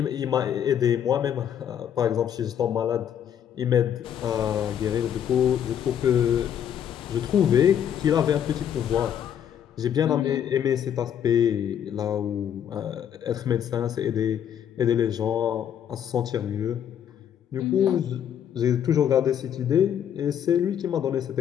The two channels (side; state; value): right; quieter; 9.3 dB